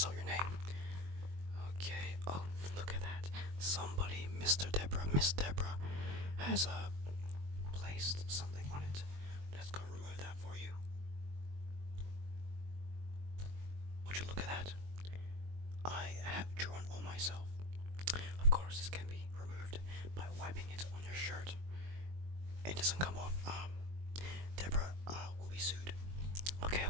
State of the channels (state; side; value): late; left; 22 ms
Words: your name. Okay. Oh, look at that. Somebody, Miss Deborah, has placed something on it. Let's go remove that for you. Would you look at that? I have drawn on myself. Of course, this can be removed by wiping it on your shirt. It doesn't come off. Deborah will be sued. Okay,